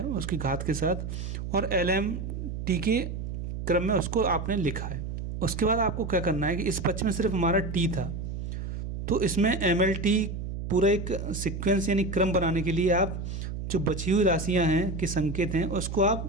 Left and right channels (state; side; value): noise; right; hum, 6 dB below the sound